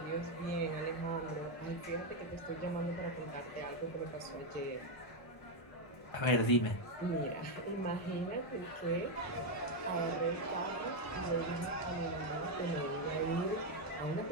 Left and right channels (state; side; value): late; right; 1.0 ms